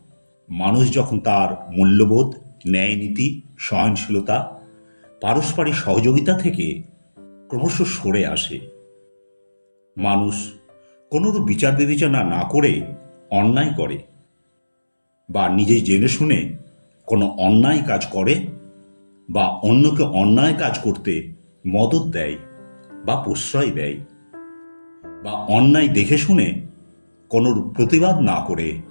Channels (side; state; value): both; inverted; correlation -1.00